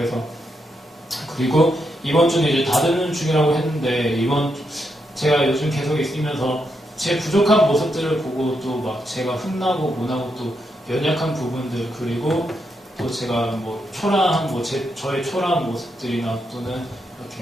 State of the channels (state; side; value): normal; both; correlation 0.82